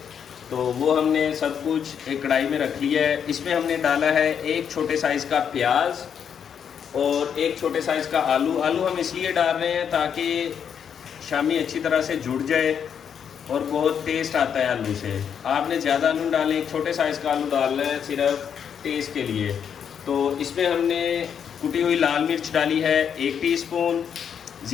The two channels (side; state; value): right; quieter; 7.8 dB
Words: तो वो हमने सब कुछ एक कढ़ाई में रख लिया है। इसमें हमने डाला है एक छोटे साइज़ का प्याज और एक छोटे साइज़ का आलू। आलू हम इसलिए डाल रहे हैं ताकि शामी अच्छी तरह से जुड़ जाए और बहुत टेस्ट आता है आलू से। आपने ज़्यादा आलू डालें, एक छोटे साइज़ का आलू डालना है सिर्फ टेस्ट के लिए। तो इसमें हमने कुटी हुई लाल मिर्च डाली है 1 टीस्पून,